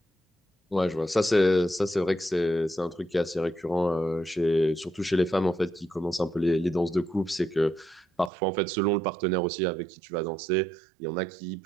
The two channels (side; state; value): left; drops out; at 8.3 s